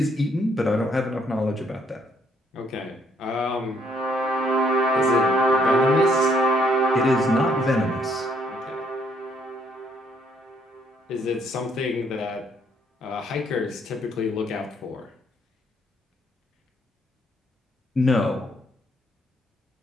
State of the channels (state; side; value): normal; both; correlation 0.68